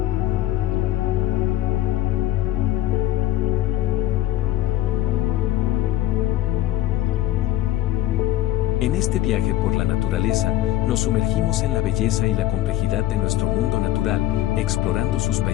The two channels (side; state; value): right; quieter; 14.0 dB